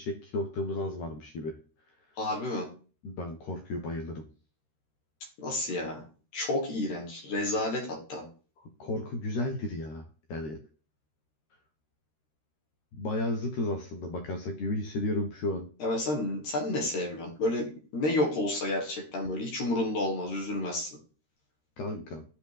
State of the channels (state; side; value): late; right; 13 ms